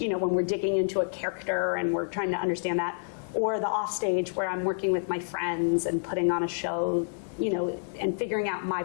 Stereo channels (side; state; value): right; silent; 58 dB below the other